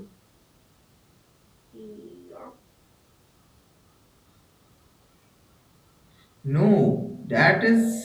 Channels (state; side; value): identical; both; correlation 1.00